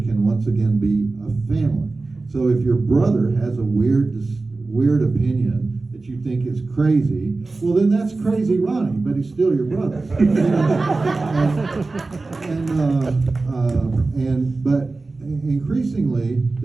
can once again be a family. So if your brother has a weird opinion that you think is crazy, well, then that's crazy Ronnie, but he's still your brother. But increasingly,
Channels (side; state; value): left; quieter; 3.5 dB